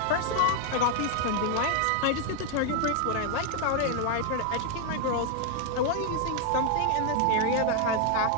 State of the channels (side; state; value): both; different; correlation 0.00